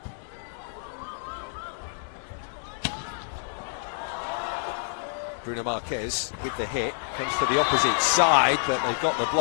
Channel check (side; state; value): right; silent; 59 dB below the other